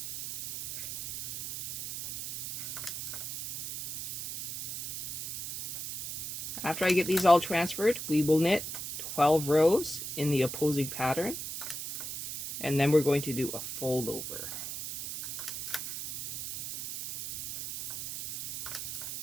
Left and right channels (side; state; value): right; noise; hiss, 6 dB below the sound